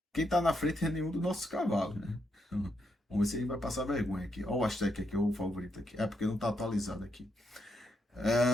quem tá na frente é nenhum dos nossos cavalos, né? Vamos ver se ele vai passar vergonha aqui. Olha o Aztec aqui, o favorito aqui. É porque não tá atualizado aqui.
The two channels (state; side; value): normal; both; correlation 0.80